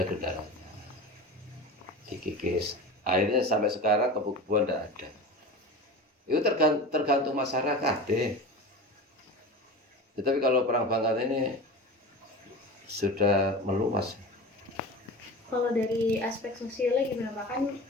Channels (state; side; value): normal; both; correlation 0.31